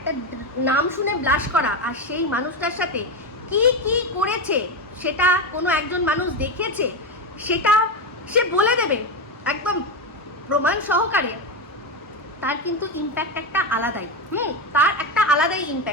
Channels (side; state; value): both; normal; correlation 0.14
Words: নাম শুনে ব্লাশ করা, আর সেই মানুষটার সাথে কি কি করেছে সেটা কোনো একজন মানুষ দেখেছে, সেটা সে বলে দেবে একদম প্রমাণ সহকারে। তার কিন্তু ইম্প্যাক্ট একটা আলাদাই, তার একটা আলাদাই